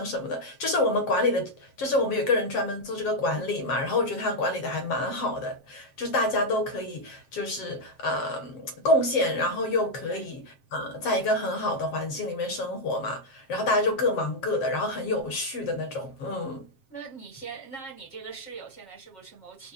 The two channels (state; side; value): late; right; 7.5 ms